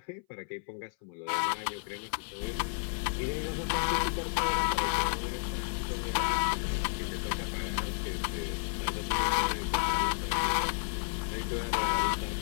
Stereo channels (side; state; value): right; silent; 56 dB below the other